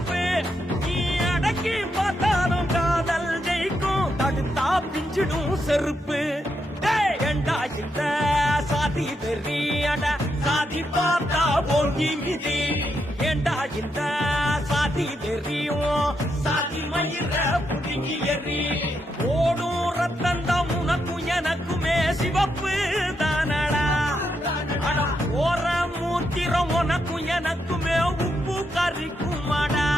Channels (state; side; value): normal; both; correlation 0.82